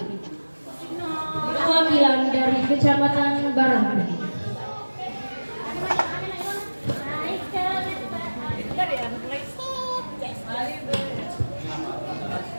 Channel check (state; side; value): inverted; both; correlation -1.00